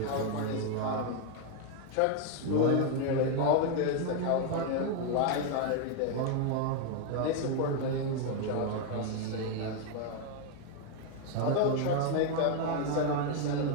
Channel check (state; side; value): different; both; correlation 0.01